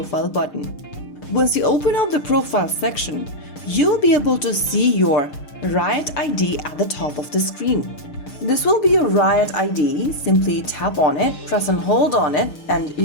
button. Once you open up the profile section, you'll be able to see your Riot ID at the top of the screen. This will be your Riot ID. Simply tap on it, press and hold on it, and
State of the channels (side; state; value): right; late; 6.6 ms